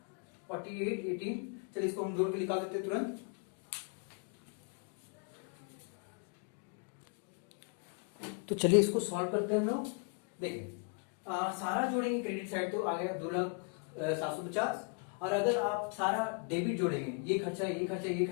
4818। चलिए इसको हम जोड़ के निकाल देते हैं तुरंत। तो चलिए इसको सॉल्व करते हैं हम लोग। देखिए सारा जोड़ेंगे क्रेडिट साइड तो आ गया 2,750, और अगर आप सारा डेबिट जोड़ेंगे, ये खर्चा ये खर्चा ये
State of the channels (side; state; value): right; quieter; 35.8 dB